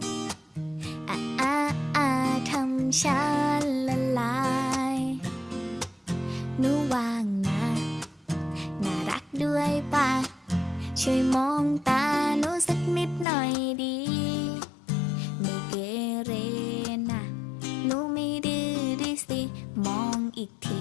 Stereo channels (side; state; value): right; drops out; at 13.2 s